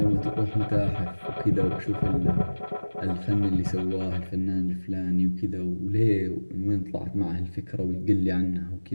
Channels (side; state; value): both; inverted; correlation -1.00